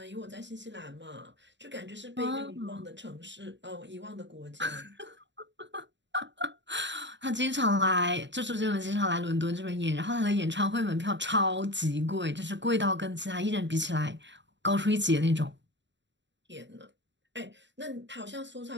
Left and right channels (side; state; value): left; late; 0.53 ms